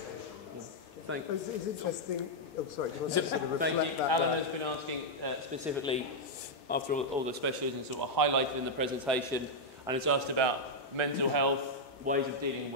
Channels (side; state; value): both; normal; correlation -0.03